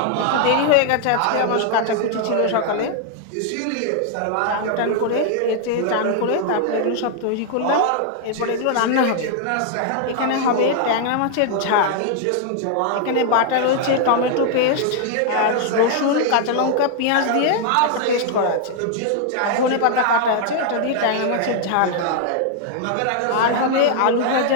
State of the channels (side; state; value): both; different; correlation 0.00